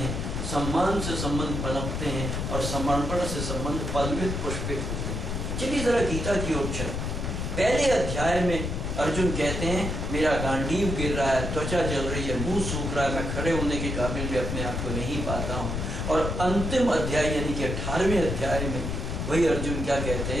सम्मान से संबंध पनपते हैं और समर्पण से संबंध पल्वित पुष्पित होते हैं। चलिए जरा गीता की ओर चलें। पहले अध्याय में अर्जुन कहते हैं मेरा गांडीव गिर रहा है, त्वचा जल रही है, मुंह सूख रहा है, मैं खड़े होने के काबिल भी अपने आप को नहीं पाता हूँ। और अंतिम अध्याय यानी कि 18वें अध्याय में वही अर्जुन क्या कहते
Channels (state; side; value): noise; left; rumble, 2 dB below the sound